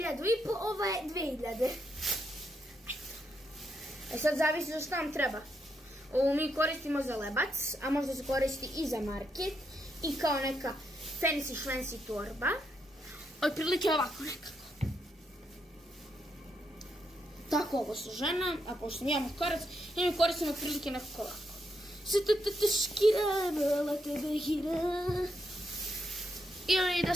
ova je 2.000. E sad zavisi za šta nam treba. Ovo mi koristimo za lebac, a možda se koristi i za market. I kao neka fancy švensi torba. Otprilike ovako nekako. Tako ovo su žena, a pošto nijemo korac, i mi koristimo otprilike nekako ovako. Ili da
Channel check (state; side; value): normal; both; correlation 0.80